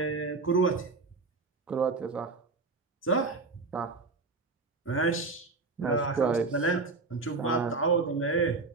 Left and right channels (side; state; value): left; quieter; 3.9 dB